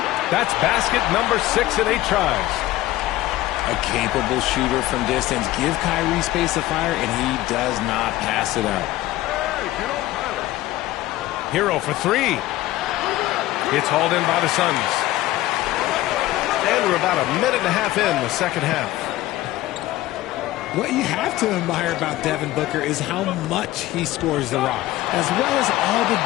That's basket number 6 in 8 tries. A capable shooter from distance. Give Kyrie space to fire, and he does not pass it up. Hero for 3. It's hauled in by the Suns. And we're about a minute and a half in the second half. What you have to admire about Devin Booker is how much he scores the rock, as well as all the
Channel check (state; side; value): quieter; right; 16.2 dB